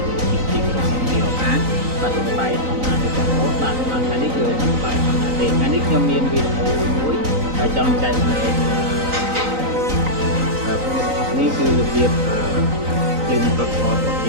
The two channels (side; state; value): left; late; 3.9 ms